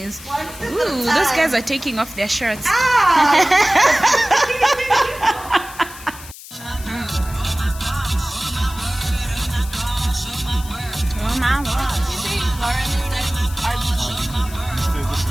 Ooh, those guys are taking off their shirts. Oh my God.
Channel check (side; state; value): left; noise; hiss, 16 dB below the sound